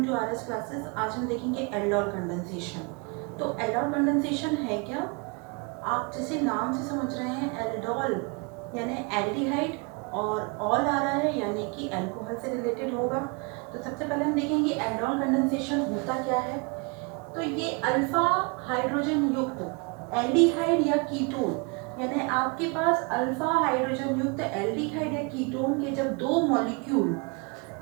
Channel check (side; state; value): left; quieter; 31.7 dB